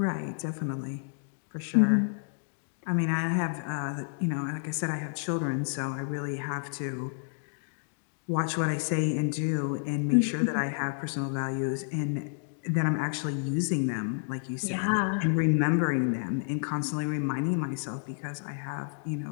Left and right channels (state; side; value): silent; right; digital silence